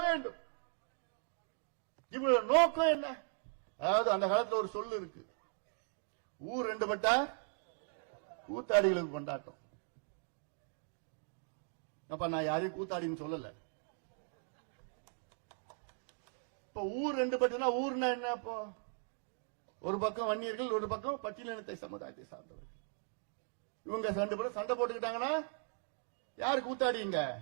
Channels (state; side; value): silent; left; 52 dB below the other